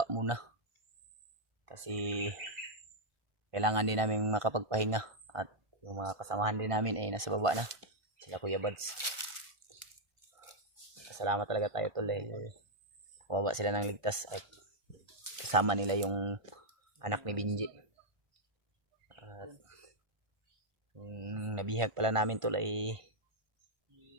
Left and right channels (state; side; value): late; left; 1.5 ms